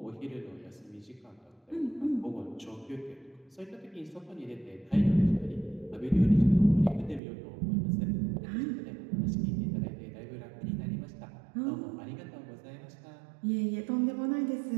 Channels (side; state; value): left; drops out; at 7.2 s